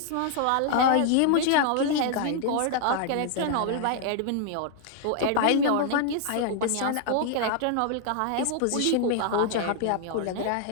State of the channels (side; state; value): both; different; correlation 0.00